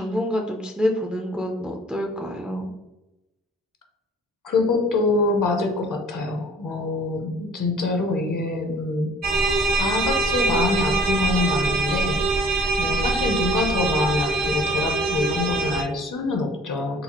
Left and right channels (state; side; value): normal; both; correlation 0.52